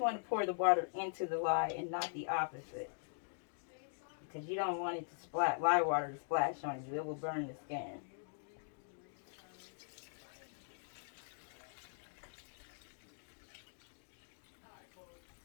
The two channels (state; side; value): silent; right; digital silence